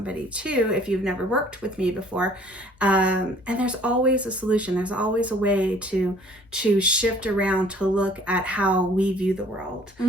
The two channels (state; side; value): normal; both; correlation 0.55